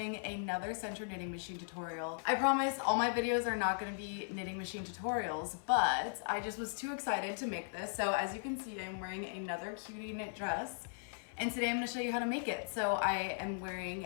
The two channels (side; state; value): right; silent; 53 dB below the other